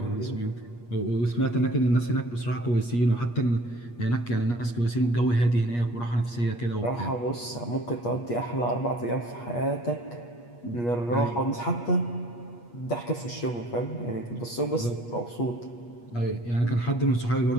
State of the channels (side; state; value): right; late; 8.4 ms